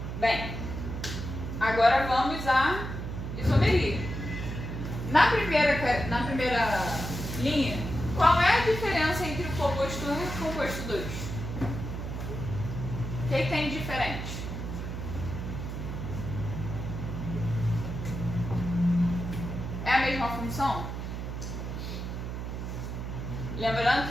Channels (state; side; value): noise; right; hum, 5 dB below the sound